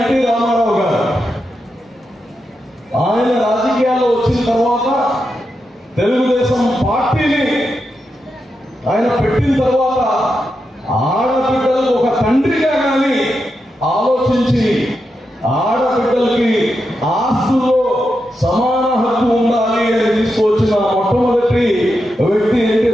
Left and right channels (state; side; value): normal; both; correlation 0.87